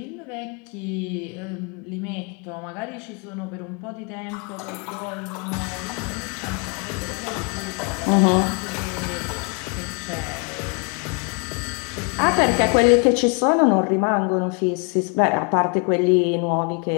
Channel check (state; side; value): quieter; right; 35.3 dB